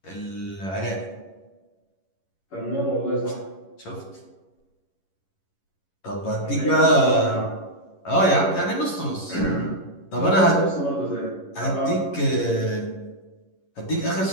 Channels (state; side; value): late; right; 11 ms